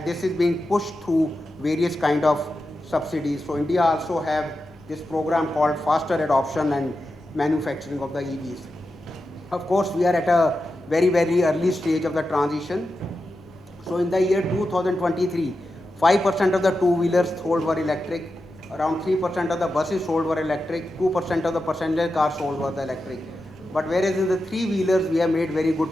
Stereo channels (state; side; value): normal; both; correlation 0.90